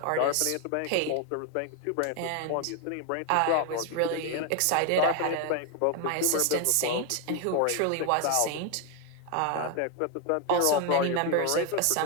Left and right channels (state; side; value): different; both; correlation 0.01